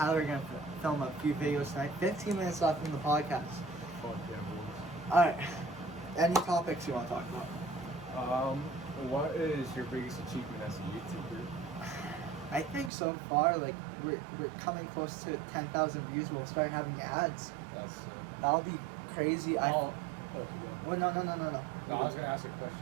are gonna film a few videos tonight. 15 minutes left in the podcast. Fuck yeah, boys. All right. Any topics you want to talk about? What is your biggest achievement as a YouTuber? I think so far, like we're coming close to 10,000 views. We'll start having ads. That's sick. That'll be crazy. Oh, you go. Well, no. No, I was gonna ask a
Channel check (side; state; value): left; drops out; at 12.9 s